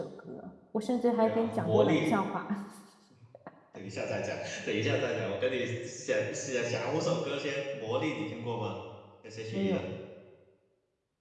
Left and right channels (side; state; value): both; identical; correlation 1.00